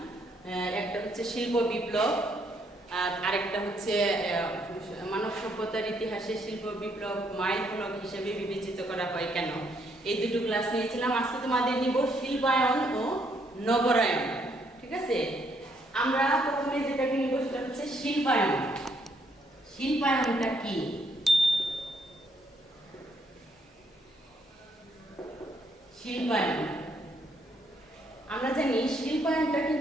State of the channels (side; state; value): both; normal; correlation 0.71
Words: একটা হচ্ছে শিল্প বিপ্লব আর আরেকটা হচ্ছে মানব সভ্যতার ইতিহাসে শিল্প বিপ্লব মাইল ফলক হিসেবে বিবেচিত করা হয় কেন। এই দুটো ক্লাস নিয়েছিলাম। আজকে তোমাদের নিব শিল্পায়ন ও নগরায়ন। ঠিক আছে, আমরা প্রথমে যেটাকে নিব সেটা হচ্ছে শিল্পায়ন। শিল্পায়নটা কি? শিল্পায়ন আমরা জানি শিল্পায়নটা